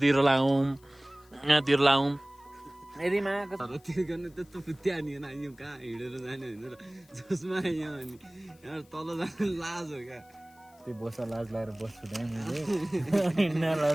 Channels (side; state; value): left; noise; hiss, 29 dB below the sound